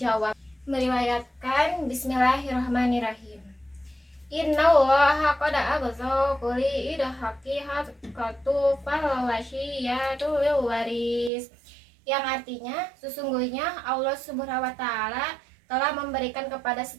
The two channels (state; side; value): drops out; left; at 11.3 s